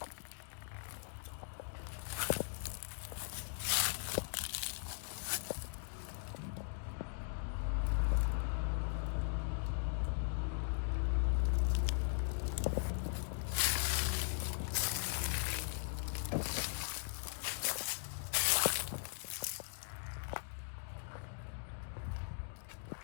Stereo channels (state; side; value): silent; right; digital silence